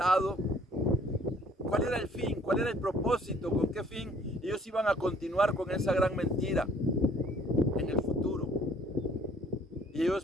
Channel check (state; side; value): normal; both; correlation 0.58